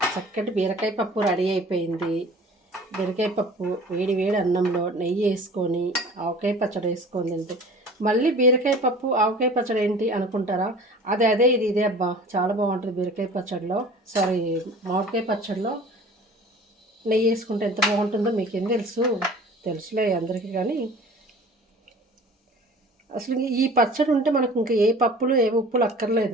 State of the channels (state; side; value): normal; both; correlation 0.44